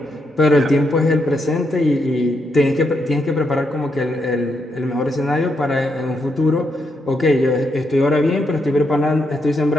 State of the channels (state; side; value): normal; both; correlation 0.80